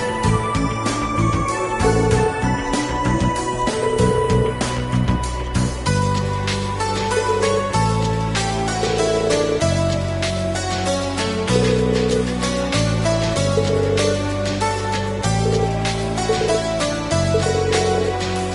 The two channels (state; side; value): identical; both; correlation 1.00